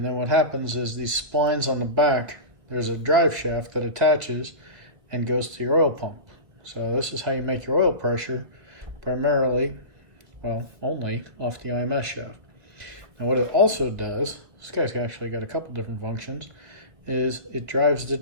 then what happens is these splines on the back, there's a drive shaft that attaches and goes to your oil pump. So this is how you make your oil pressure, primarily, well, only off the IMS shaft. Now what it also does, this guy's actually got a couple different functions, is it drives the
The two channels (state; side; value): late; left; 1.6 ms